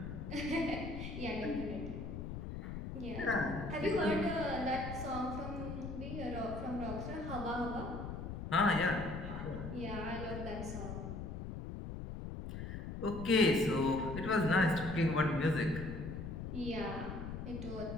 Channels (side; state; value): left; noise; rumble, 7 dB below the sound